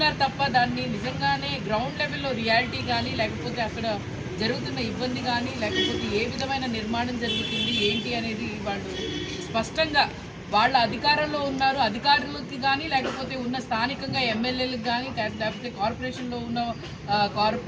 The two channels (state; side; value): identical; both; correlation 1.00